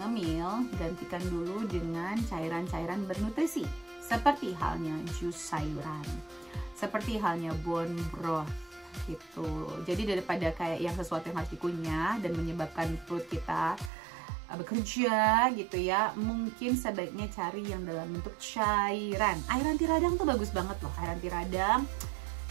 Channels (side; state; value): left; drops out; at 13.9 s